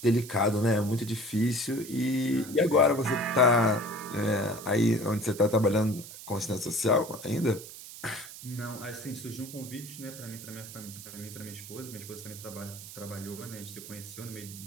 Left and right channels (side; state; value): right; noise; hiss, 13 dB below the sound